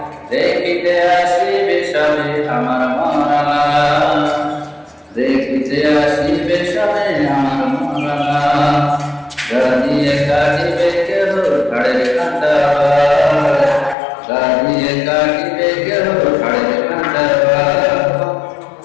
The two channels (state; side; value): drops out; right; at 14.0 s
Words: দেখিতে আসিবে সবে আমার মরা, দেখিতে আসিবে সবে আমার মরা, দাবিয়ে কাটিবে কেহ ঘরের কাঁচা, দাবিয়ে কাটিবে কেহ ঘরের কাঁচা।